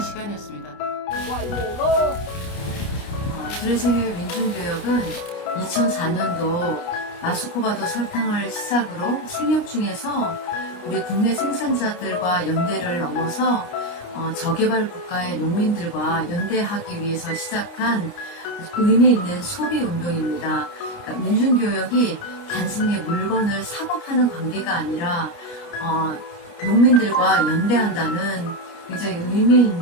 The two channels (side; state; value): right; late; 29 ms